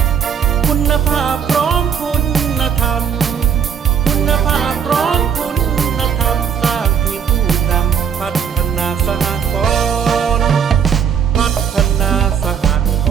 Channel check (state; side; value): quieter; left; 7.4 dB